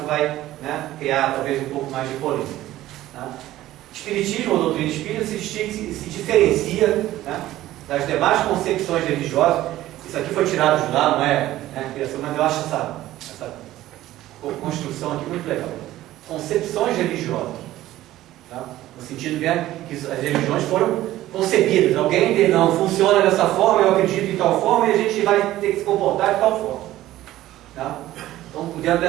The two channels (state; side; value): quieter; left; 14.9 dB